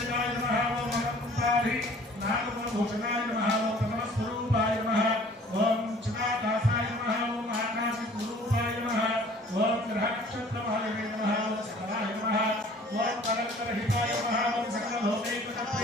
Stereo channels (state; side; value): normal; both; correlation 0.52